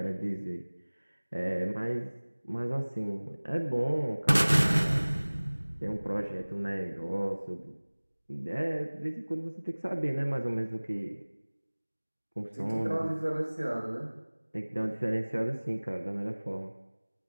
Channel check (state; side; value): inverted; both; correlation -1.00